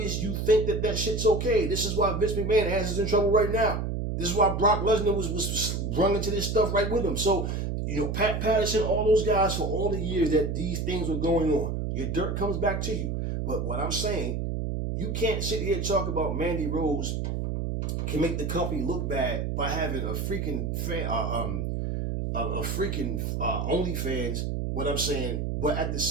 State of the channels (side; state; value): right; noise; hum, 1 dB below the sound